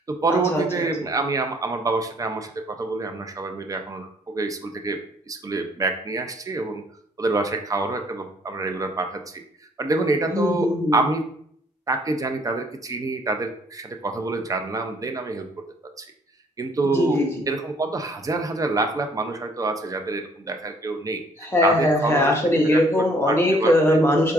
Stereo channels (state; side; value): normal; both; correlation 0.61